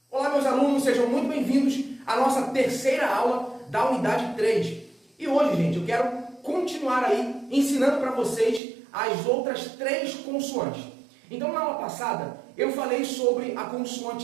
meus alunos, sejam muito bem-vindos à nossa terceira aula da unidade 3. E hoje, gente, eu quero continuar aí ensinando para vocês as outras três consoantes. Então, na aula passada, eu falei sobre a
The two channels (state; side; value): drops out; left; at 8.6 s